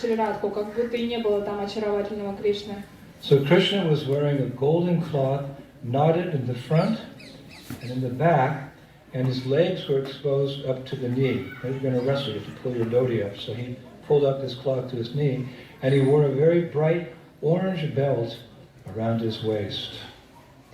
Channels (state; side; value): identical; both; correlation 1.00